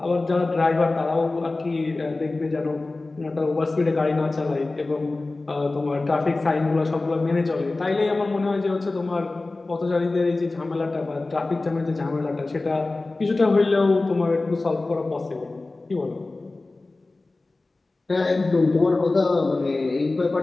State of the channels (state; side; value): quieter; right; 3.2 dB